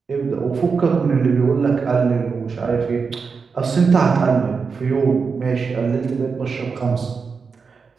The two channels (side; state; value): left; quieter; 5.2 dB